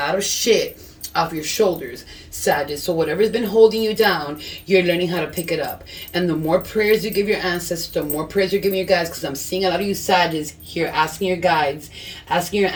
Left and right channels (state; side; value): identical; both; correlation 1.00